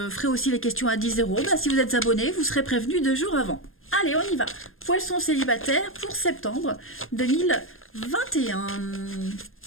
ferai aussi les questions à 10 €. Si vous êtes abonné, vous serez prévenu 2 jours avant. Allez, on y va. Poissons célibataires pour septembre 2021.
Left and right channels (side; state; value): right; late; 0.60 ms